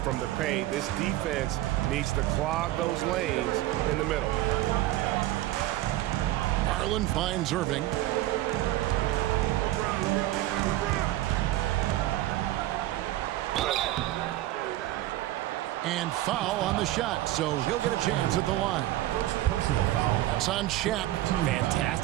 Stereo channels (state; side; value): quieter; left; 15.5 dB